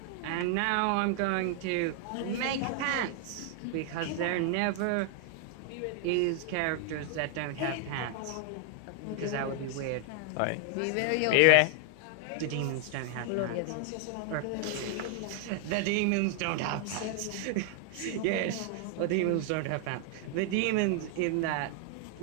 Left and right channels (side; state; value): both; different; correlation 0.00